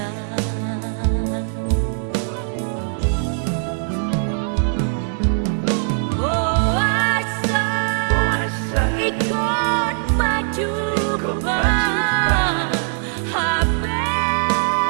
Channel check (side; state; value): left; silent; 64 dB below the other